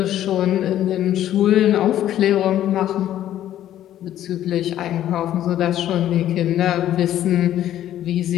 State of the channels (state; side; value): quieter; right; 12.0 dB